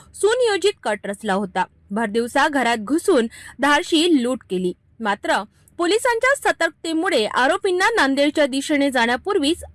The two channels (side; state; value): both; identical; correlation 1.00